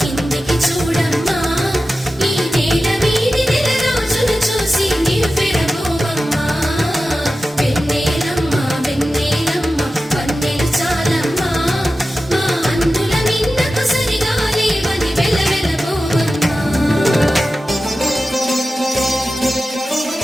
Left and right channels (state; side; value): normal; both; correlation 0.94